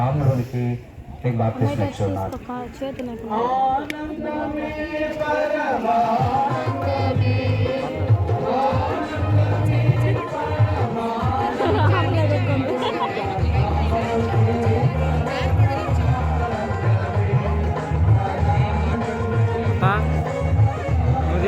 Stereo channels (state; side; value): identical; both; correlation 1.00